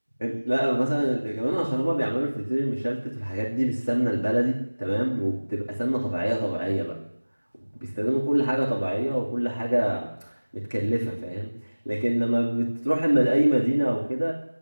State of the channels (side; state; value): both; inverted; correlation -1.00